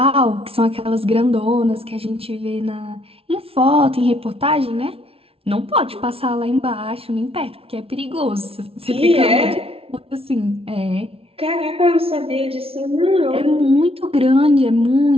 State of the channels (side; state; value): left; late; 0.27 ms